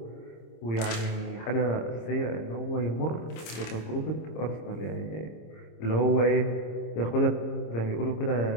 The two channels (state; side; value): late; right; 26 ms